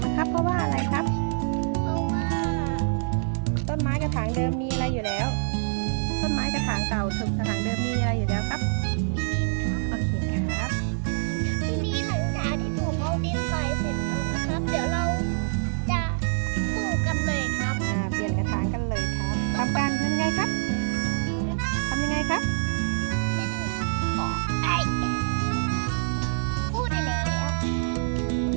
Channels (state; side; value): silent; left; digital silence